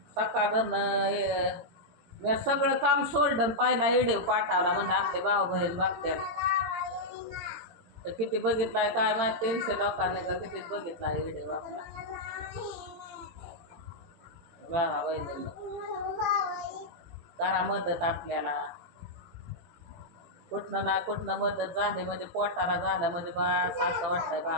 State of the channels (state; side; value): late; left; 18 ms